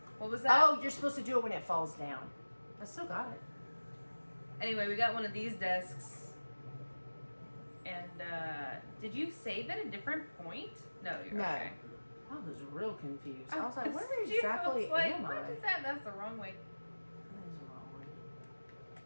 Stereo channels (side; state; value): both; inverted; correlation -1.00